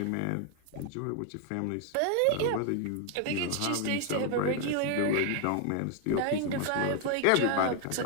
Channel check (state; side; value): different; both; correlation 0.00